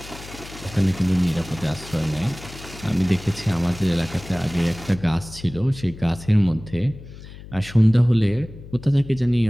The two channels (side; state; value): left; noise; hum, 16 dB below the sound